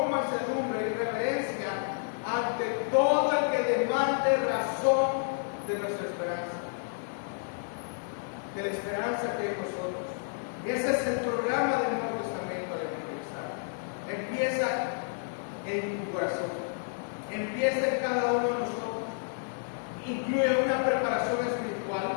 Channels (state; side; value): silent; right; 56 dB below the other